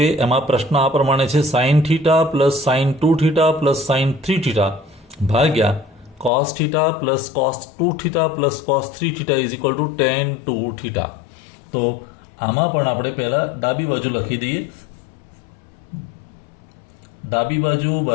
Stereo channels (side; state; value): right; drops out; at 6.3 s